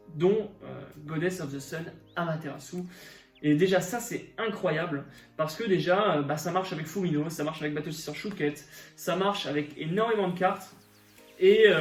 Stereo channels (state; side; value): identical; both; correlation 1.00